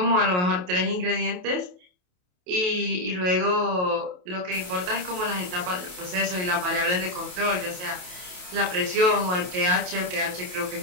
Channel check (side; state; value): left; late; 28 ms